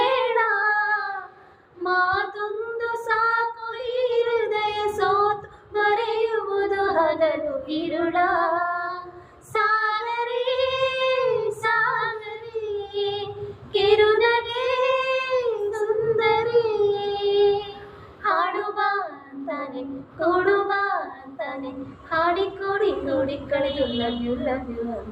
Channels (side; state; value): both; identical; correlation 1.00